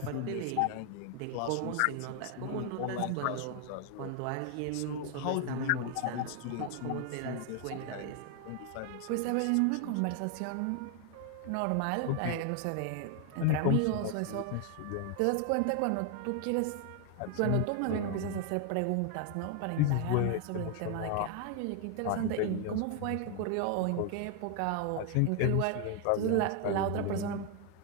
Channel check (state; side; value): different; both; correlation 0.00